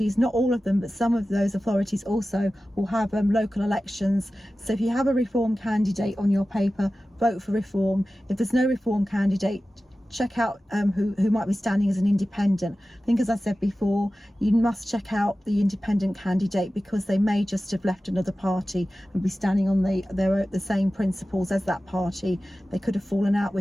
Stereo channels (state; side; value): normal; both; correlation 0.95